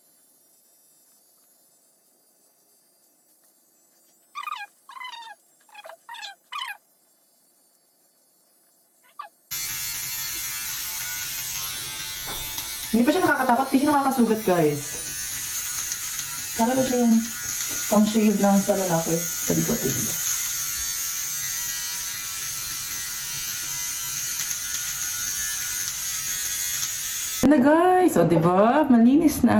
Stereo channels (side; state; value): both; identical; correlation 1.00